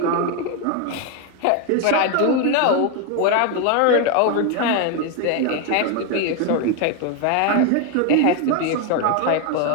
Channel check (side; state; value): both; different; correlation 0.01